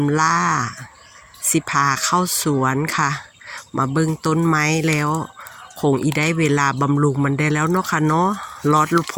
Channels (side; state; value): both; identical; correlation 1.00